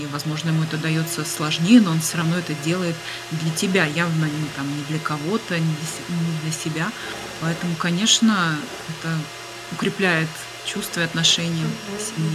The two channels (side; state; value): both; identical; correlation 1.00